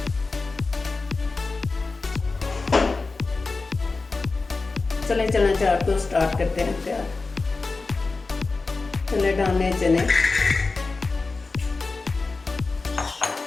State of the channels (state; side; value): quieter; right; 3.9 dB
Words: चले चना चाट को स्टार्ट करते हैं तैयार। चने डालने चने,